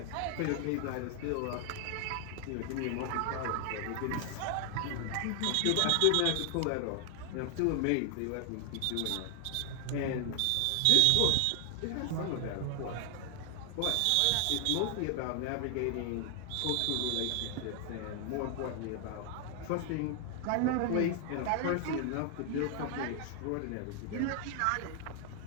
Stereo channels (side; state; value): both; different; correlation 0.00